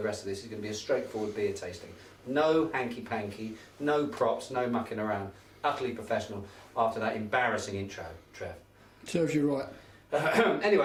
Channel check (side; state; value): both; identical; correlation 1.00